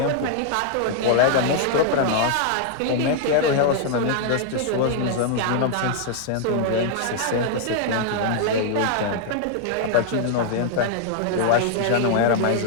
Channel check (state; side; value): different; both; correlation 0.00